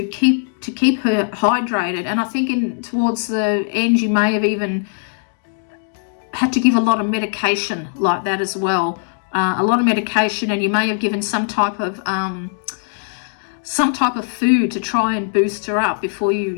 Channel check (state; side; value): silent; right; digital silence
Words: her hydrated. And I think towards the end you may have even had to give a lot of medication like that as well, a lot of medication, and you may have given some type of food to try and boost her up before you